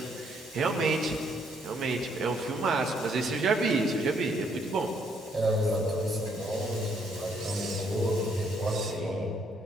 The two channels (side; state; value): both; normal; correlation 0.70